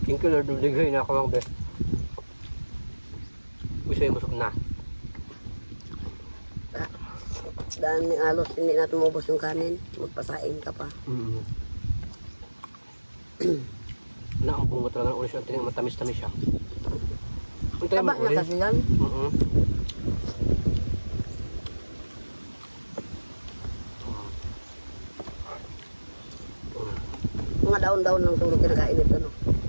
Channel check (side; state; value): both; inverted; correlation -1.00